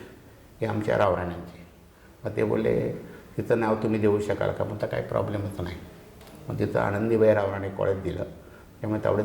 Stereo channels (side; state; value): both; identical; correlation 1.00